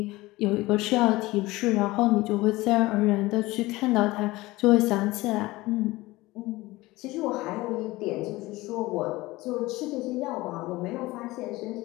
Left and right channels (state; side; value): quieter; right; 19.8 dB